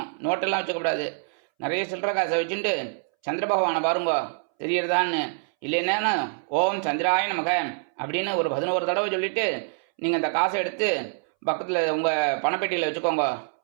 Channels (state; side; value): silent; left; 61 dB below the other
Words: நோட்டெல்லாம் வச்சுக்கக்கூடாது. நிறைய சில்லற காசை வச்சுட்டு சந்திர பகவானை பாருங்க, தெரியறதான்னு. இல்லைன்னா ஓம் சந்திராய நமக அப்படின்னு ஒரு 11 தடவை சொல்லிட்டு நீங்கள் அந்த காசை எடுத்து பக்கத்தில் உங்கள் பணப்பெட்டியில் வச்சுக்கோங்க.